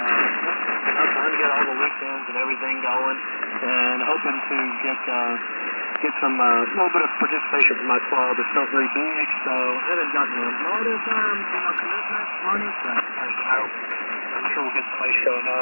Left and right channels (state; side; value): inverted; both; correlation -1.00